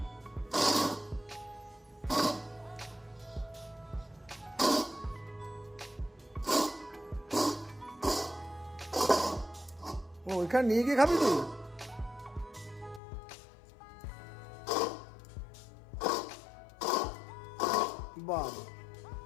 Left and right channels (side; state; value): right; drops out; at 13.0 s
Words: ও ওইখানে নিয়ে গিয়ে খাবি তুই? বাবা,